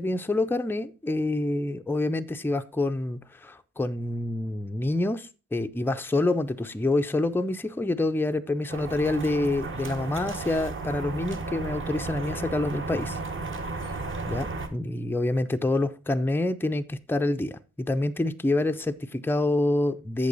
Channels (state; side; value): normal; both; correlation 0.84